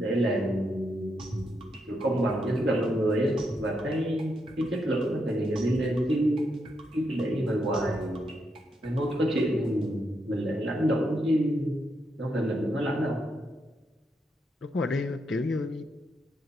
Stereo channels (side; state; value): both; normal; correlation 0.81